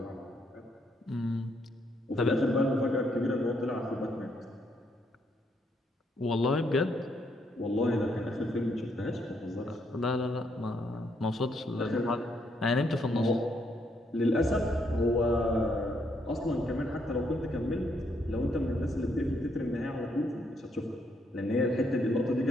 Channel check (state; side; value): normal; both; correlation 0.74